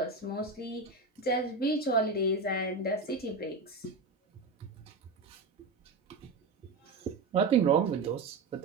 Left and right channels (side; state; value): left; quieter; 3.7 dB